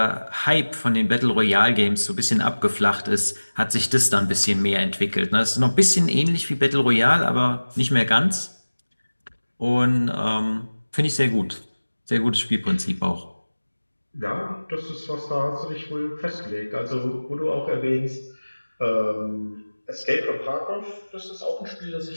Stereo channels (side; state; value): both; inverted; correlation -1.00